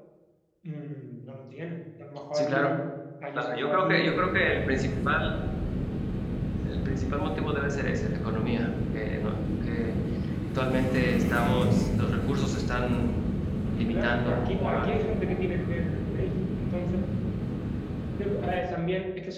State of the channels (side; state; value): both; identical; correlation 1.00